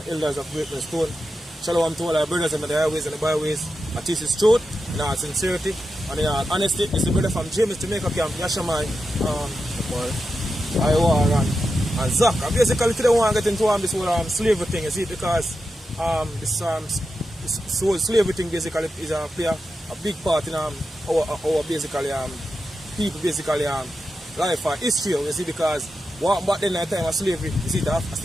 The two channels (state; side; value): normal; both; correlation 0.89